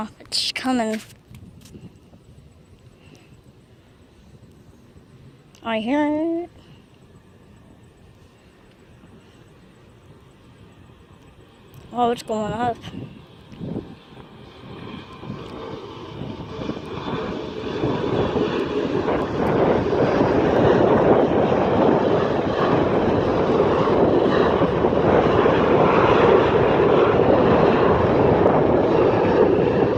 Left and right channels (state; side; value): identical; both; correlation 1.00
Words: It's coming. I hear it. Oh, it's going up.